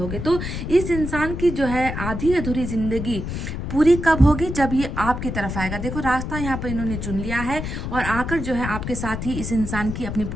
तो इस इंसान की जो है आधी अधूरी ज़िंदगी पूरी कब होगी? जब ये आपकी तरफ आएगा। देखो, रास्ता यहाँ पर इन्होंने चुन लिया है, और आकर जो है आपके साथ ही इस इंसान की अपनी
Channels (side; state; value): left; noise; rumble, 5 dB below the sound